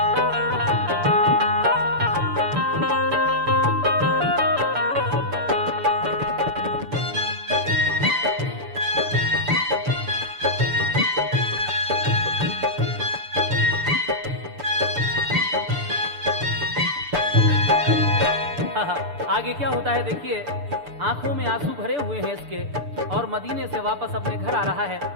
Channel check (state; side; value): late; left; 6.8 ms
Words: आगे क्या होता है देखिए, आंखों में आंसू भरे हुए हैं इसके, और मदीने से वापस अपने घर आ रहा है।